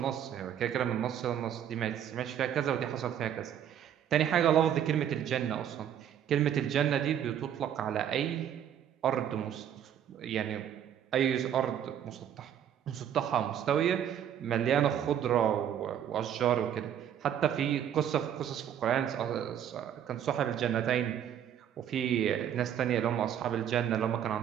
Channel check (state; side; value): quieter; left; 9.7 dB